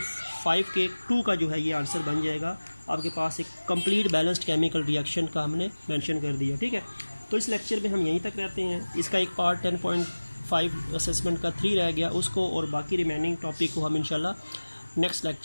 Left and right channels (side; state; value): both; inverted; correlation -1.00